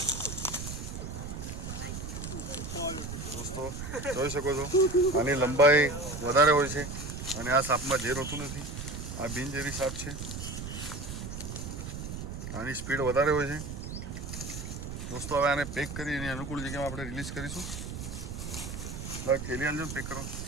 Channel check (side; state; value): right; noise; rumble, 7 dB below the sound